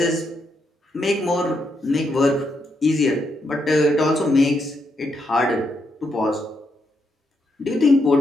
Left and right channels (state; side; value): normal; both; correlation 0.80